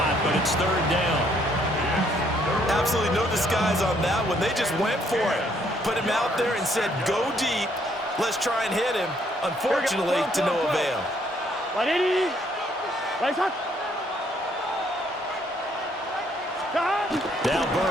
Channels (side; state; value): both; normal; correlation 0.68